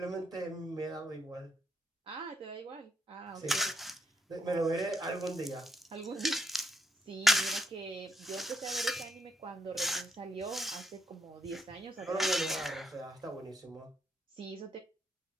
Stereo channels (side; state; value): both; normal; correlation 0.77